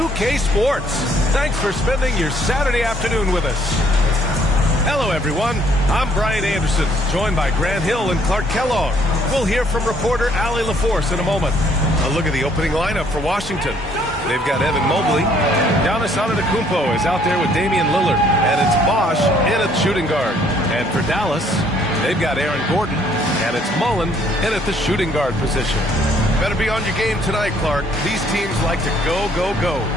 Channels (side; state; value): both; normal; correlation 0.64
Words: Sports. Thanks for spending your Saturday afternoon with us. Hello, everyone. I'm Brian Anderson, joined by Grant Hill and Clark Kellogg. We'll hear from reporter Allie LaForce in a moment. A look at the opening lineup for Washington. They've got Evan Mobley. Giannis Antetokounmpo is out there with Damian Lillard. And it's Bosch in at shooting guard. And for Dallas, they've got Aaron Gordon. And it's Mullen in at the shooting guard position. Better be on your game tonight, Clark. These teams like to go, go, go.